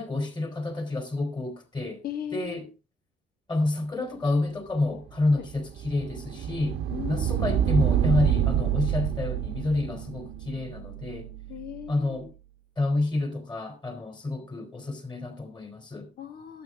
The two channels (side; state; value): both; normal; correlation 0.72